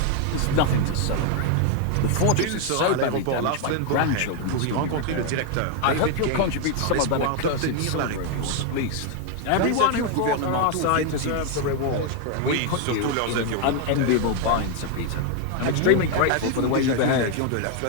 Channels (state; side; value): different; both; correlation 0.01